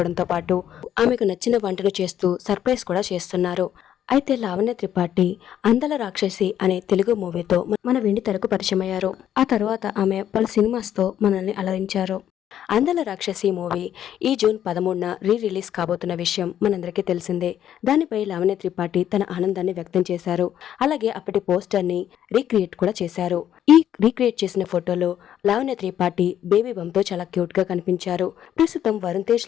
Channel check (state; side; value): quieter; right; 10.5 dB